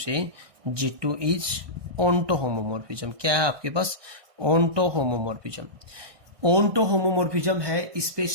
G2 इज ऑनटो होमोमॉर्फिज्म, क्या है आपके पास, ऑनटो होमोमॉर्फिज्म। ऑनटो होमोमॉर्फिज्म है, इस पे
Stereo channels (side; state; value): left; late; 1.6 ms